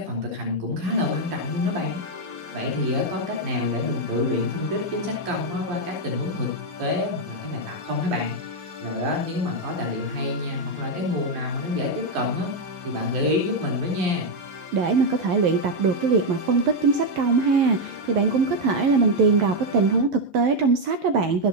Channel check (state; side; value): late; left; 11 ms